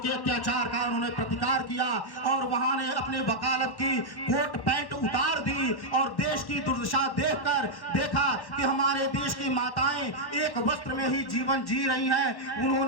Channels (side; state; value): right; late; 1.1 ms